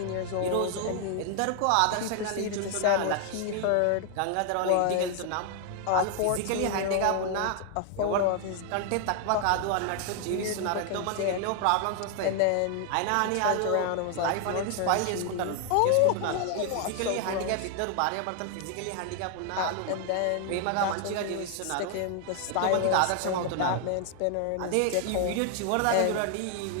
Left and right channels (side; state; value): both; different; correlation 0.00